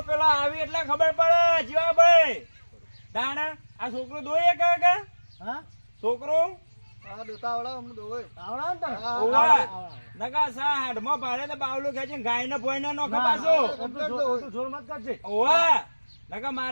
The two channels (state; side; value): inverted; both; correlation -1.00